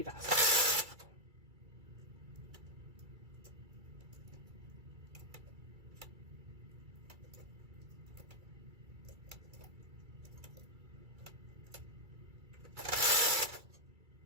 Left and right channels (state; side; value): late; left; 2.3 ms